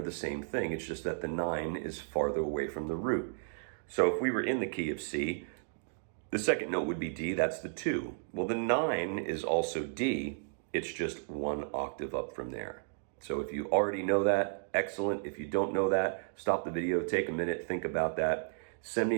the same thing. It's just that the 9 is farther away from the root. So if we were in the key of C, the second note would be D, that's the 2. Well, the 9 is also D, it's just 1 octave up from there. So if you already know that, excellent. If you don't know that, stop the video, take a minute, think about that. Send me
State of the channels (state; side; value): silent; left; digital silence